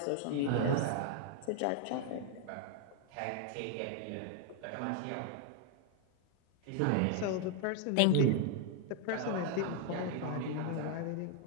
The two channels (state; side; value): different; both; correlation 0.00